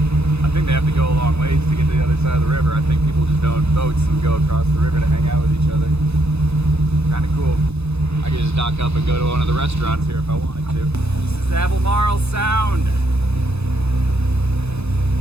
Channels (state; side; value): late; left; 0.80 ms